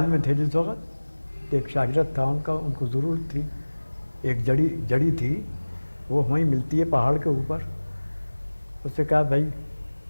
में थे जिस वक्त, तो एक शागिर्द था उनका, उनको ज़रूरत थी, एक जड़ी थी, वो वहीं मिलती है पहाड़ के ऊपर। उससे कहा भाई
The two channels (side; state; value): both; inverted; correlation -1.00